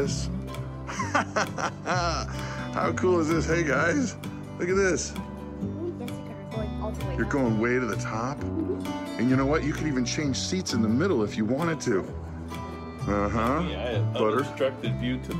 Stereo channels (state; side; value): identical; both; correlation 1.00